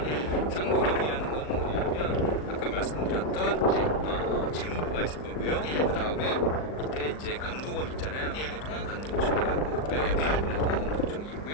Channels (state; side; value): late; right; 39 ms